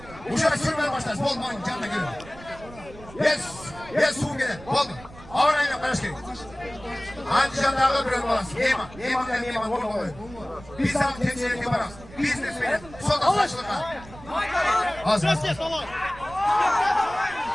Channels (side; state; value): right; noise; rumble, 18 dB below the sound